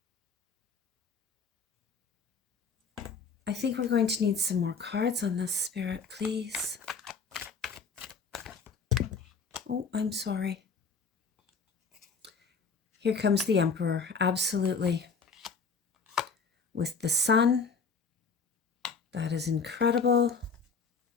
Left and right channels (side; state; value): right; quieter; 5.0 dB